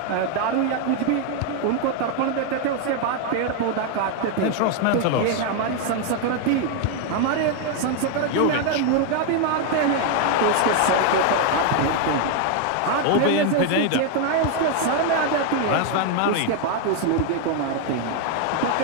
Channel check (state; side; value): different; both; correlation 0.01